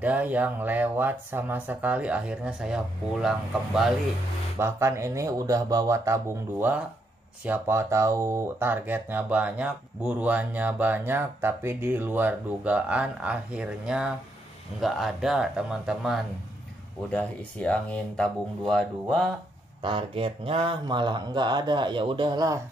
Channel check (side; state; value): both; normal; correlation 0.77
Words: yang lewat sama sekali. Akhirnya saya pulang kembali. Bahkan ini udah bawa tabung 2. Siapa tahu targetnya banyak, buruannya banyak, tapi di luar dugaan akhirnya nggak ada teman-teman. Udah isi angin tabung 22, targetnya malah nggak ada. Ya udahlah,